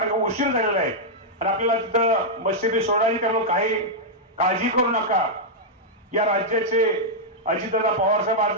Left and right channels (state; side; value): normal; both; correlation -0.06